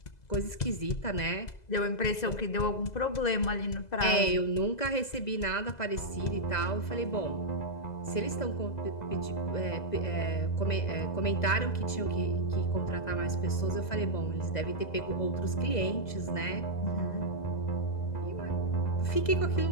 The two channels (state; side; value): late; right; 2.0 ms